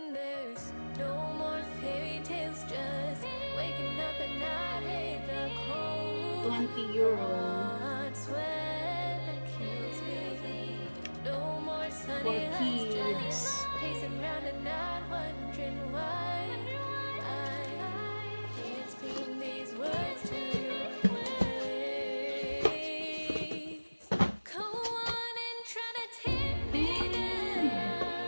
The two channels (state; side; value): inverted; both; correlation -1.00